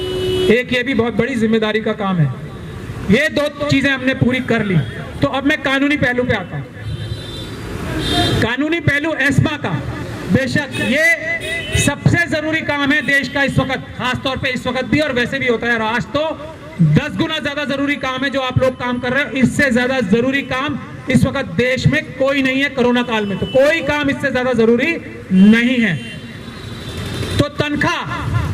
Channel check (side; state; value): both; identical; correlation 1.00